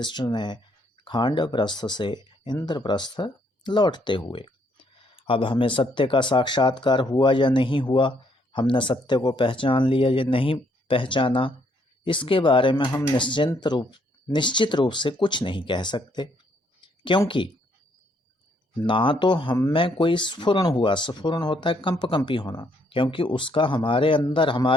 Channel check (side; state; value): both; normal; correlation 0.70